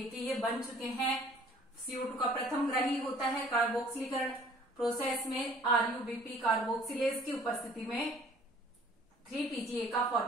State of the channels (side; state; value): both; normal; correlation 0.54